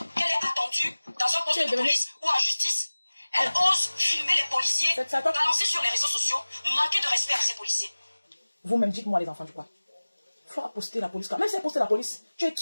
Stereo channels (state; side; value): inverted; both; correlation -1.00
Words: qu'elle est attendue dans un poste de police ou en justice, elle ose filmer les policiers, balancer sur les réseaux sociaux, manquer de respect à ces policiers. Vous-même, dites-moi les enfants du quoi. Fleur a posté la police. Même si elle a posté la police, tu es